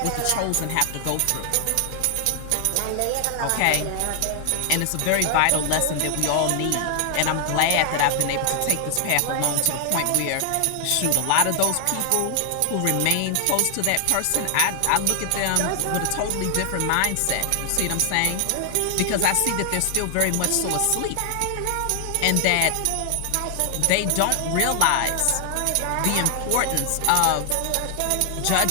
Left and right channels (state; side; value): different; both; correlation 0.00